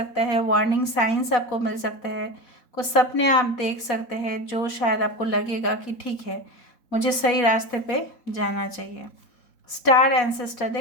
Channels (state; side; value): late; right; 4.1 ms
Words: है, वार्निंग साइंस आपको मिल सकते हैं, कुछ सपने आप देख सकते हैं जो शायद आपको लगेगा कि ठीक है, मुझे सही रास्ते पे जाना चाहिए। स्टार एंसेस्टर,